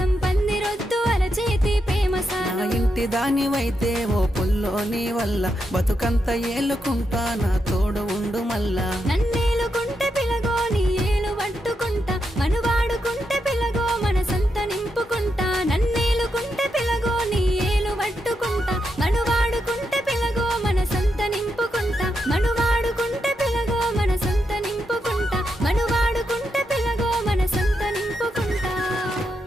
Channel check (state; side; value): normal; both; correlation 0.84